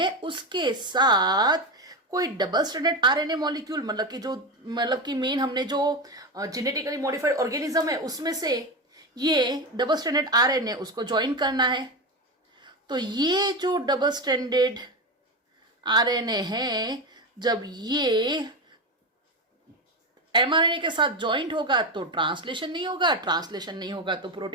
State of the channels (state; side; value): normal; both; correlation 0.17